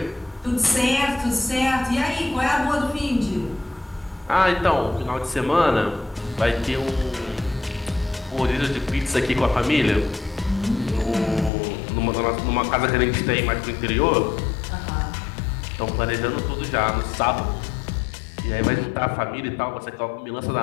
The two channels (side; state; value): right; drops out; at 11.5 s